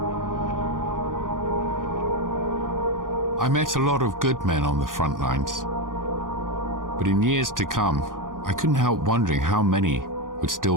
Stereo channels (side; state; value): left; late; 0.90 ms